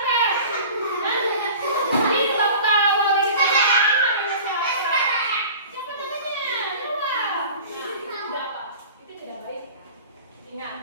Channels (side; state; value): both; inverted; correlation -0.40